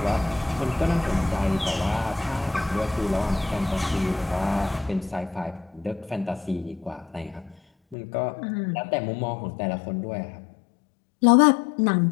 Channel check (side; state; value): right; drops out; at 8.0 s